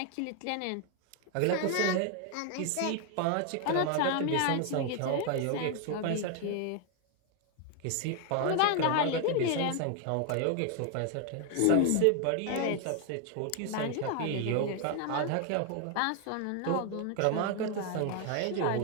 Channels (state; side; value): different; both; correlation 0.00